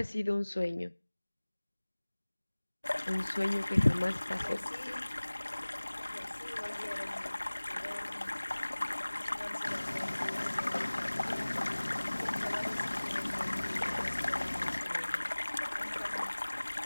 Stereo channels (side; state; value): both; inverted; correlation -1.00